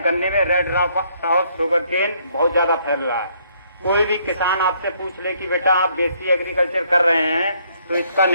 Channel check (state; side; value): inverted; both; correlation -0.68